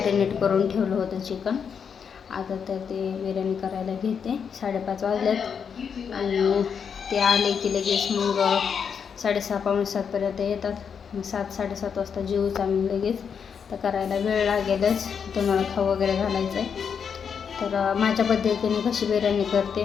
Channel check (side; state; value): right; quieter; 6.9 dB